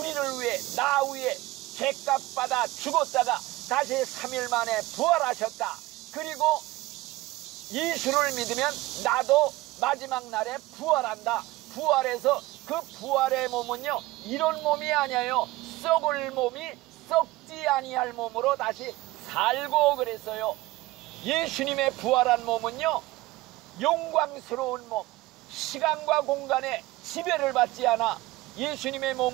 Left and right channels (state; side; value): quieter; left; 18.7 dB